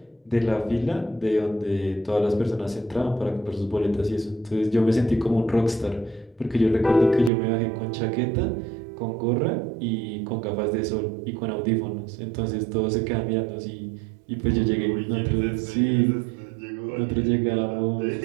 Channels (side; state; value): left; drops out; at 7.3 s